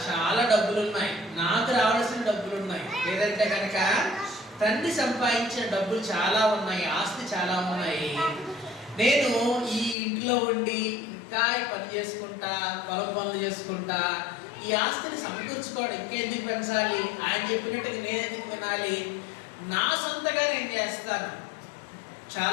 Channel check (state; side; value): drops out; right; at 10.0 s